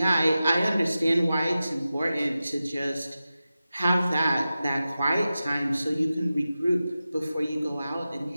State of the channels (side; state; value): both; inverted; correlation -0.94